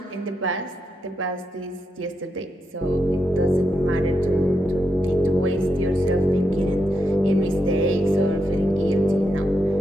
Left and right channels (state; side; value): normal; both; correlation 0.83